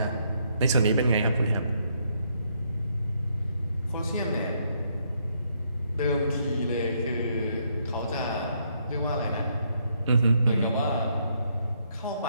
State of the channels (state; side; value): inverted; both; correlation -0.73